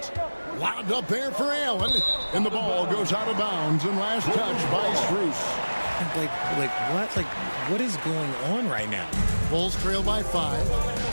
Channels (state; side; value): inverted; both; correlation -1.00